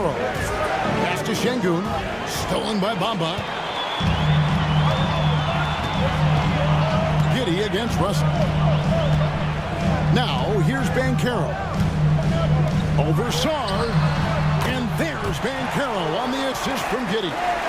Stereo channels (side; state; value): both; identical; correlation 1.00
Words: Pass to Şengün. Stolen by Bamba. Giddey against Russell. Now here's Banchero. Over Sarr. And there's Banchero on the assist from Giddey.